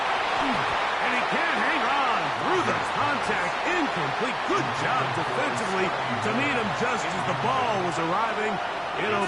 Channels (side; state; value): both; identical; correlation 1.00